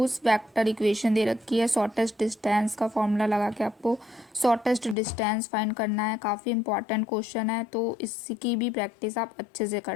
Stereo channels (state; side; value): drops out; right; at 5.0 s